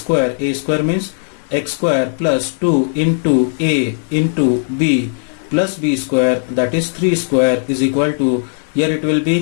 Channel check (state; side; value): silent; right; digital silence